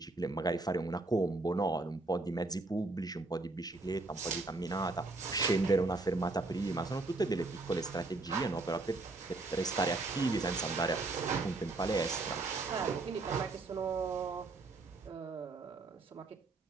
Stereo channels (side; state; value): left; quieter; 3.2 dB